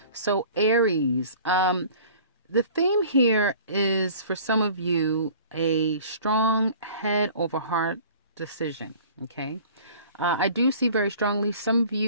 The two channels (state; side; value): inverted; both; correlation -0.47